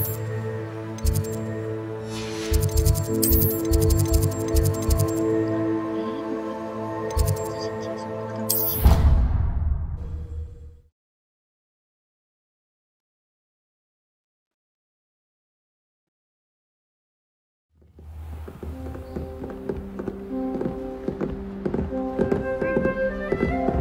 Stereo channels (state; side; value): identical; both; correlation 1.00